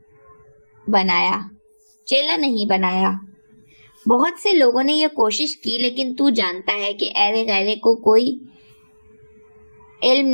بنایا۔ بہت سے لوگوں نے یہ کوشش کی، لیکن تو جانتا ہے کہ ایرے غیرے کو کوئی علم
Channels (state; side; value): inverted; both; correlation -1.00